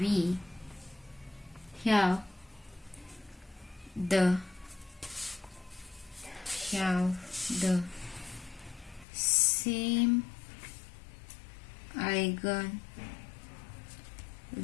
have the same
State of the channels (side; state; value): right; drops out; at 9.1 s